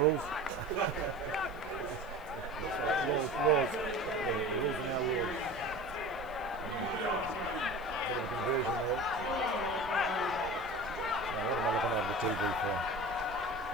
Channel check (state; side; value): noise; left; hiss, 27 dB below the sound